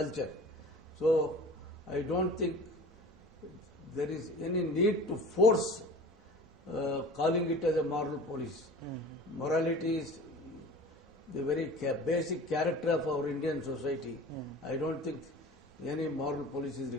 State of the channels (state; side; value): normal; both; correlation 0.40